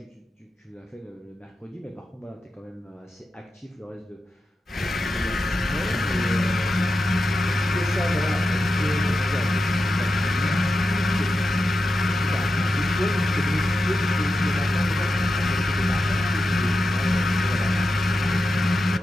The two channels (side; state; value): both; normal; correlation 0.90